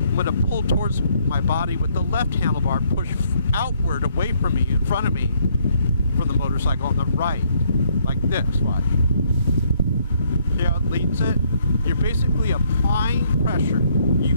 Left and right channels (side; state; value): both; inverted; correlation -0.68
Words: going to pull towards my body with the left handlebar, push outward away from me, in front of me, from the motorcycle on the right, like this, watch. See how it leans it? You're basically applying pressure.